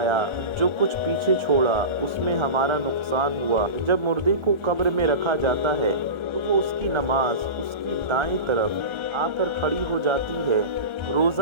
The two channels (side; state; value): left; late; 1.3 ms